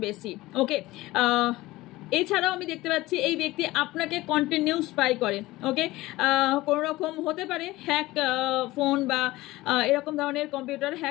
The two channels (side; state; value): right; quieter; 18.6 dB